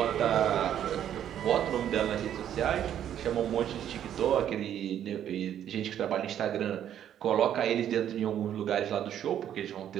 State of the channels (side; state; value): left; quieter; 10.3 dB